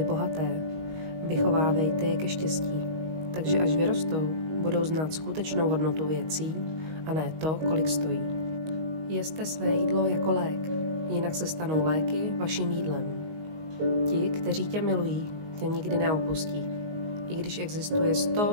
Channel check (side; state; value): left; late; 19 ms